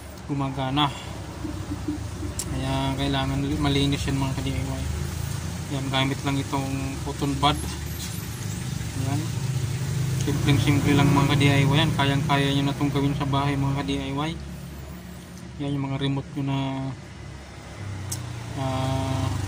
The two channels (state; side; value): identical; both; correlation 1.00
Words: gumagana. Kaya kailangan malinis yan mga ka-DIY. Yan, gamit lang itong cotton bud. Yan, simple lang mga ka-DIY yan. Kayang-kaya nyo na itong gawin sa bahay mga ka-DIY. Yan yung mga remote nyo na